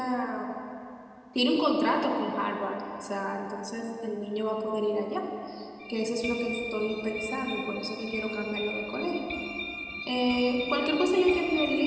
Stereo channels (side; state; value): both; identical; correlation 1.00